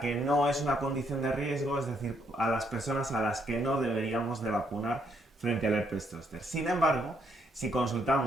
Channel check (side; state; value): both; normal; correlation 0.72